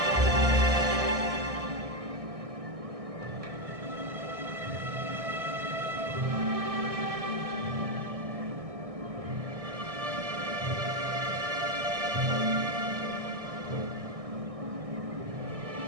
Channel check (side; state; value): left; late; 1.6 ms